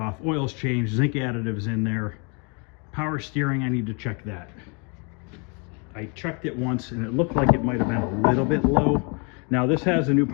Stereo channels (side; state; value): right; quieter; 34.0 dB